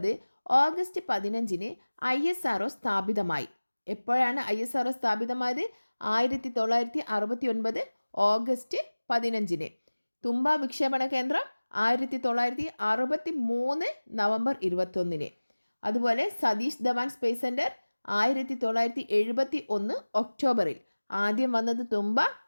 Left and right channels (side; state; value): both; inverted; correlation -1.00